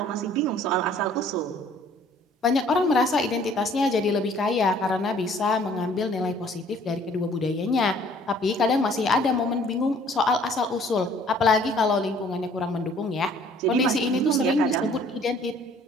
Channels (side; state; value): both; normal; correlation 0.57